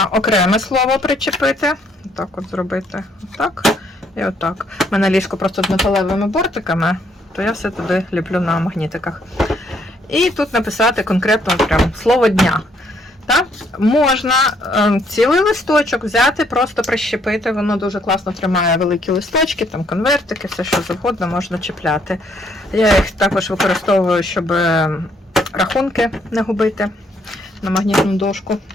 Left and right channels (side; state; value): both; normal; correlation 0.69